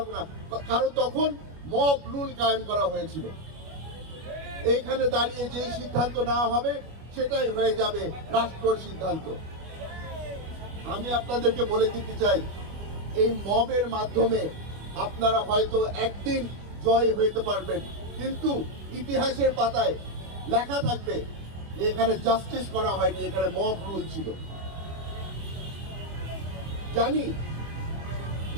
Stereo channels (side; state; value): left; late; 25 ms